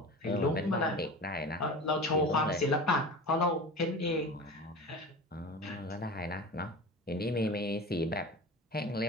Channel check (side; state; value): both; normal; correlation 0.33